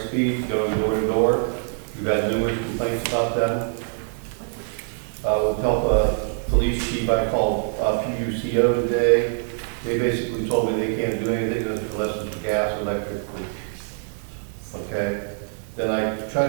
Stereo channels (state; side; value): silent; left; 63 dB below the other